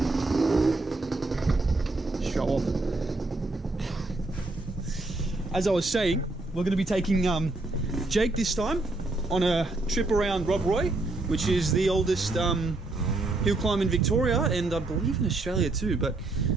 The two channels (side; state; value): left; quieter; 3.1 dB